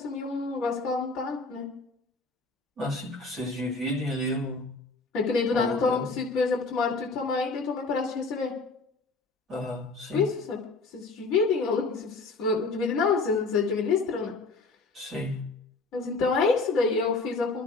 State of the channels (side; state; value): right; quieter; 3.7 dB